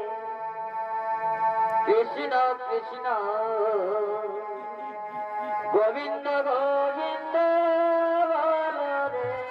কৃষ্ণ কৃষ্ণ গোবিন্দ গোবিন্দ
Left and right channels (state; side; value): identical; both; correlation 1.00